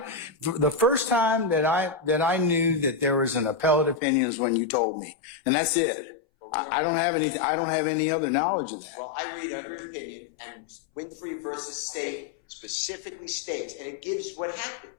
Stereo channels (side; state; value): right; drops out; at 4.0 s